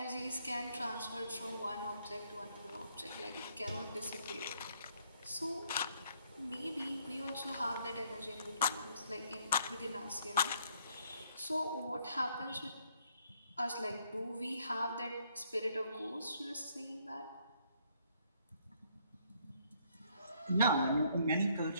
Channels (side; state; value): both; inverted; correlation -0.68